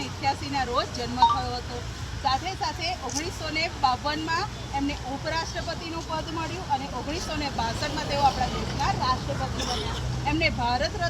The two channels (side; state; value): both; identical; correlation 1.00